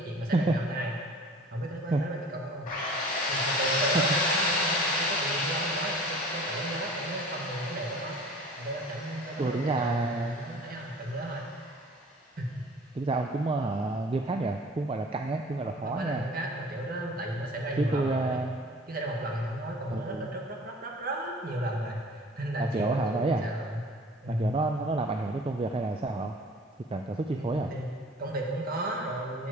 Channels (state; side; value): normal; both; correlation 0.46